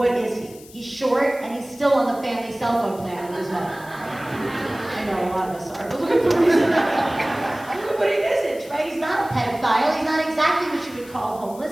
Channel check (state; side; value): noise; left; hiss, 21 dB below the sound